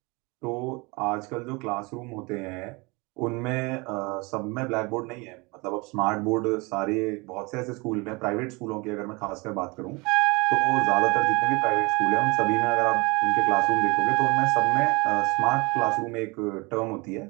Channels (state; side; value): quieter; left; 26.5 dB